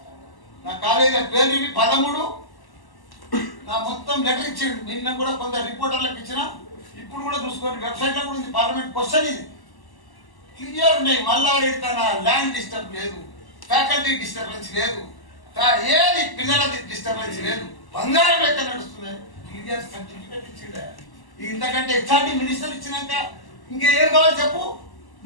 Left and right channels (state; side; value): late; right; 1.1 ms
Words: నా కాలేజీ పేరు 13 నా మొత్తం లెటర్ ఇచ్చిండు. నిన్న కూడా కొందరు రిపోర్టర్లకు ఇచ్చిన, ఇప్పుడు కూడా చూసుకోండి వెబ్సైట్ లో కూడా ఉంది. పార్లమెంట్ క్వశ్చన్ ఇది క్లియర్ ఉన్నాయి. మల్లారెడ్డి తన ల్యాండ్ డిస్టర్బ్ లేదు, ఫ్యాకల్టీ డిస్టర్బెన్స్ లేదు, ఏది పిల్లల డిస్టర్బెన్స్ లేదు, బంగారం లెక్క నడుస్తుంది. క్లియర్ సర్టిఫికేట్ ఇచ్చిండ. ఇంతకంటే హెచ్ఆర్డి మినిస్టర్ ఇచ్చినాక ఇంకేం కావాలి చెప్పు,